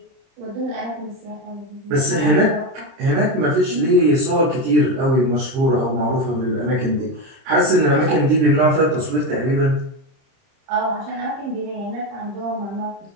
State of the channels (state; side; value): late; left; 30 ms